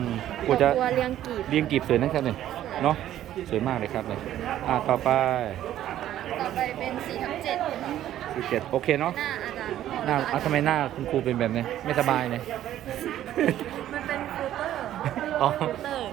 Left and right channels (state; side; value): quieter; left; 12.3 dB